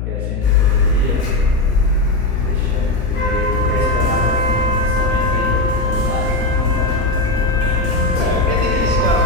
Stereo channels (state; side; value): noise; left; hum, 4 dB below the sound